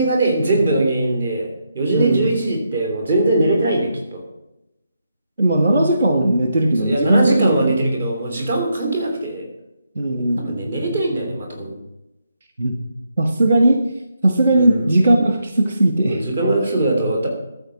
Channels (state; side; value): inverted; both; correlation -0.81